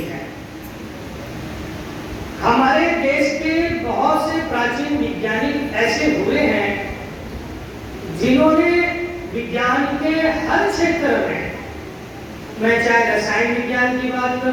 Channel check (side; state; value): both; identical; correlation 1.00